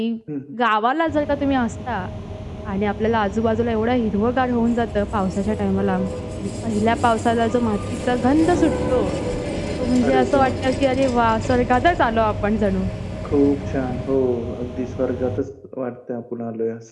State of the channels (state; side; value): identical; both; correlation 1.00